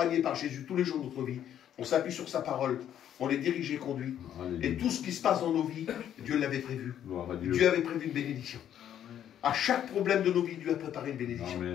par Jésus tous les jours de notre vie. On s'appuie sur sa parole. On est dirigé et conduit. Alléluia. Et tout ce qui se passe dans nos vies, Dieu l'avait prévu. Gloire à Dieu. Dieu avait prévu une bénédiction. À chaque problème de nos vies, Dieu a préparé une bénédiction.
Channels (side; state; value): right; quieter; 10.3 dB